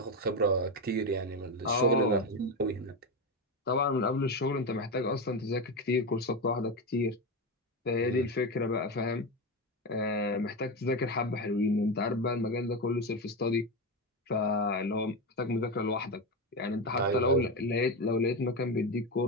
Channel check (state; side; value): normal; both; correlation 0.15